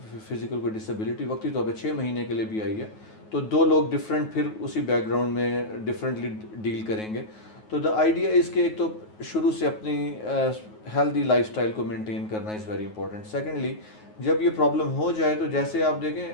فزیکل کوئی ڈسیبلٹی وقتی طور پہ 6 مہینے کے لیے بھی آئی ہے، تو 2 لوگ ڈفرینٹ پھر اسی بیک گراؤنڈ میں ڈفرینٹلی ڈیل کریں گے. تو دا آئیڈیا از کہ ایک تو شروع سے اپنی ہیلدی لائف اسٹائل کو مینٹین کرنا از ویری امپورٹنٹ. سیکنڈلی جب یہ پرابلم ہو جائے تو جیسے آپ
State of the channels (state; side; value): late; right; 9.4 ms